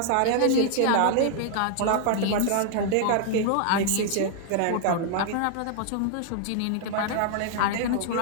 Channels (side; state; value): both; different; correlation -0.01